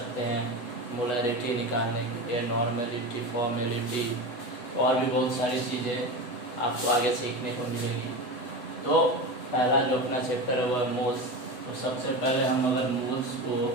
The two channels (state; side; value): late; right; 8.0 ms